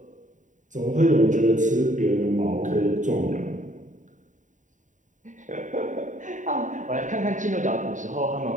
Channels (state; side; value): late; left; 0.36 ms